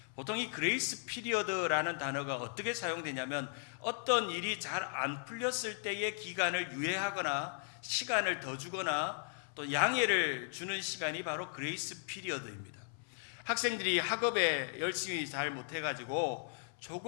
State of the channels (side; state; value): right; silent; 53 dB below the other